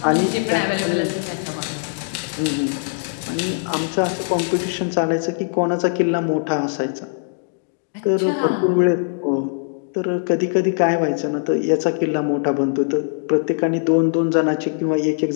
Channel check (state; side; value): silent; right; digital silence